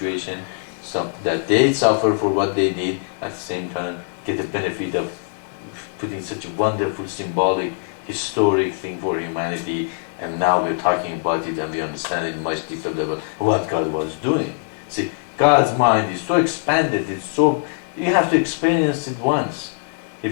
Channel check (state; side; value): silent; right; 58 dB below the other